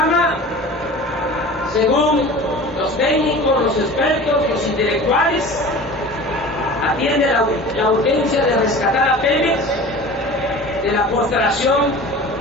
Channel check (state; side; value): normal; both; correlation 0.38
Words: según los técnicos, los expertos, los intelectuales, atiende la urgencia de rescatar a Pemex de la postración